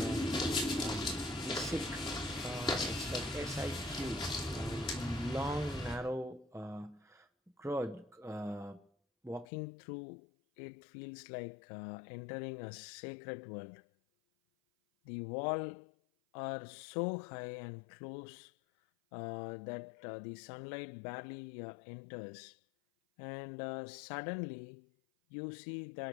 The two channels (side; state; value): right; drops out; at 9.5 s